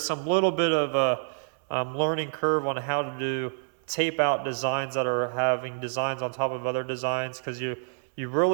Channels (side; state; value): left; silent; 58 dB below the other